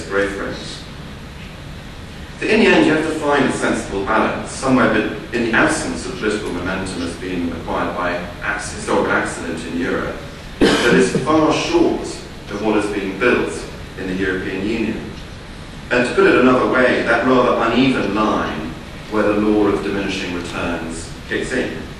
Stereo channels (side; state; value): both; identical; correlation 1.00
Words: growth rates. So in the end, you have to find a sensible balance, somewhere in the absence of political momentum as being acquired by historical accident in Europe, that is far short of what is being built in the European Union. And to put it another way, that rather uneven line where the law of diminishing returns kicks in.